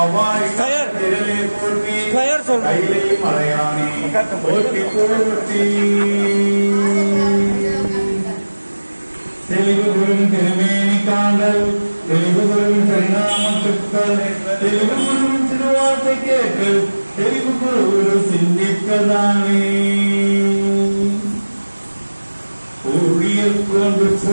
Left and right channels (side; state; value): both; inverted; correlation -1.00